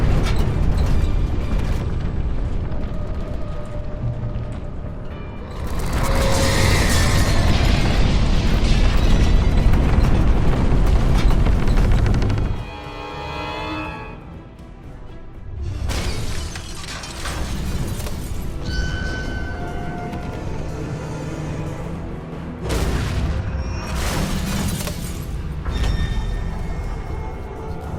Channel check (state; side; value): identical; both; correlation 1.00